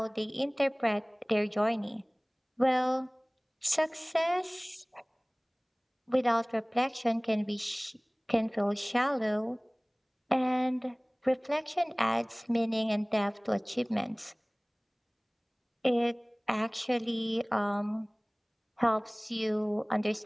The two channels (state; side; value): identical; both; correlation 1.00